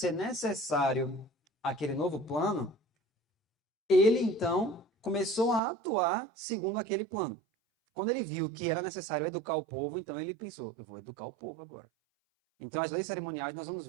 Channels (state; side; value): drops out; left; at 5.6 s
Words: necessário aquele novo plano, ele então começou a atuar segundo aquele plano. Quando ele viu que era necessário educar o povo, então ele pensou: eu vou educar o povo agora. Então, as leis cerimoniais nós vamos